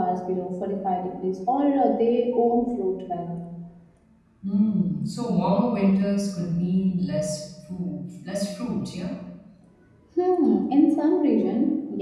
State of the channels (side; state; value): both; identical; correlation 1.00